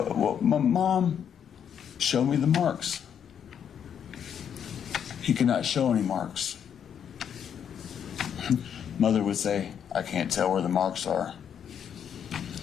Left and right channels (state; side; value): quieter; right; 8.4 dB